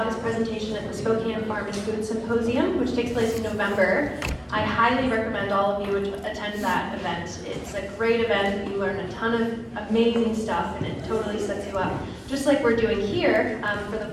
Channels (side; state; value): both; identical; correlation 1.00